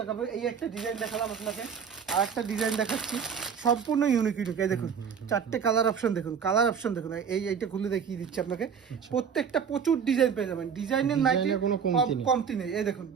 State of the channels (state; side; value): quieter; left; 7.0 dB